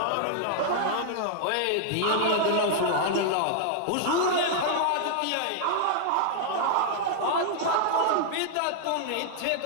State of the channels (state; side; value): different; both; correlation -0.01